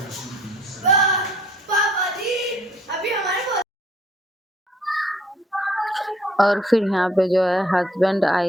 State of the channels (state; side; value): normal; both; correlation 0.60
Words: और फिर यहाँ पे जो है हस्बैंड